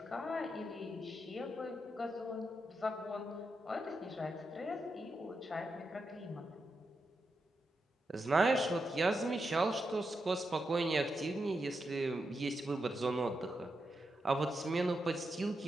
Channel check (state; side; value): normal; both; correlation 0.85